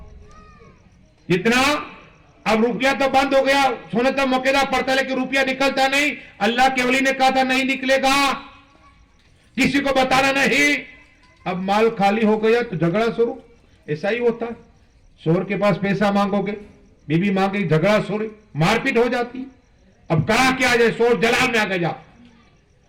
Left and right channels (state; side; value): identical; both; correlation 1.00